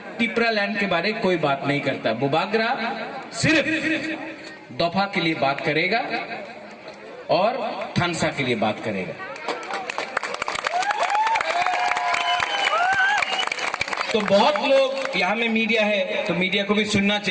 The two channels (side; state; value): both; identical; correlation 1.00